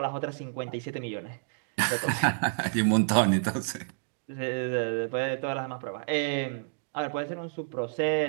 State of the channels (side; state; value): left; silent; digital silence